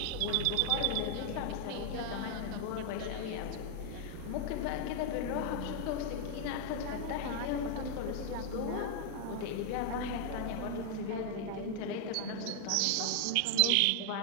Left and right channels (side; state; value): both; different; correlation 0.00